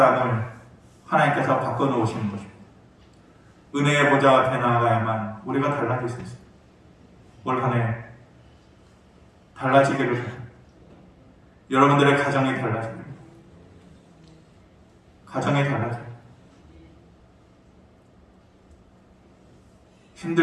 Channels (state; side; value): identical; both; correlation 1.00